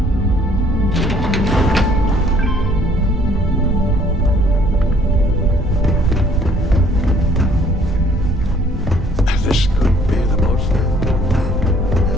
This could be the most...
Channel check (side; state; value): both; normal; correlation 0.60